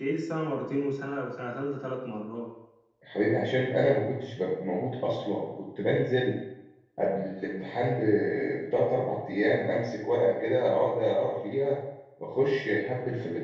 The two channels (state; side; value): identical; both; correlation 1.00